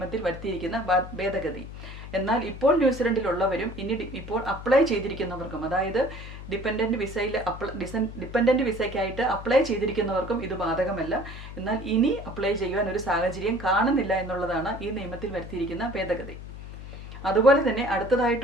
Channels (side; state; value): left; noise; hum, 12 dB below the sound